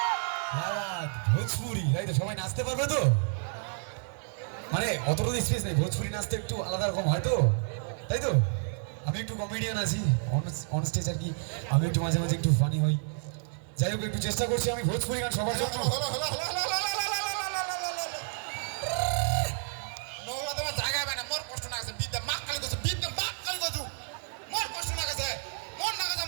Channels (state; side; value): silent; left; digital silence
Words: ভোজপুরি, তাই তো? সবাই নাচতে পারবে তো? মানে অতটুকু স্পেস নেই, ভোজপুরি নাচতে একটু আলাদা রকম হয় তো, তাই তো? আমি একটু কমেডিয়ান আছি অন স্টেজ আর কি, আমি একটু মাঝে মাঝে একটু ফানি হই। যাই হোক, একটু চেষ্টা করছি আমি ভোজপুরি গান সবার জন্য। জায়গা পায় না, মোর কষ্ট না গেছে, বিদ্যা মাক কালি গেছে, বিদ্যা মাক কালি গেছু, মোর কষ্ট না গেছে, মোর না গেছে,